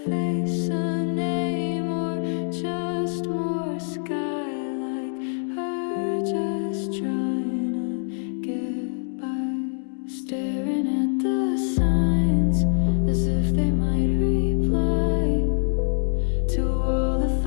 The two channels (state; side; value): silent; right; 62 dB below the other